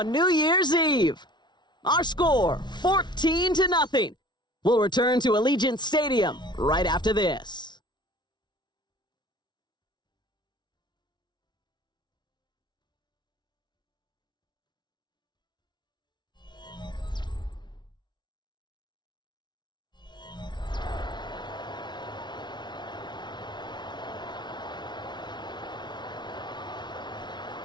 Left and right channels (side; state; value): right; late; 0.21 ms